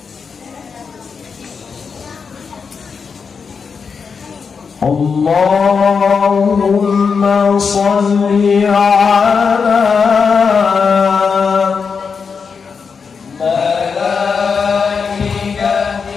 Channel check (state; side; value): quieter; right; 5.6 dB